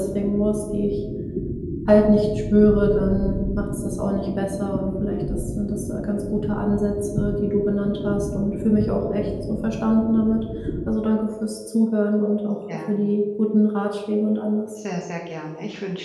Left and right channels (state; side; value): identical; both; correlation 1.00